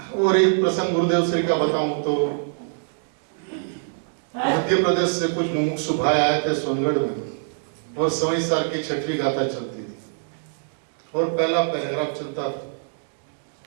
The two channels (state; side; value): silent; left; digital silence